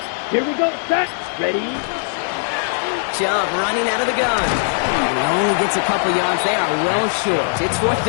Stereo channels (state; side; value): silent; right; 66 dB below the other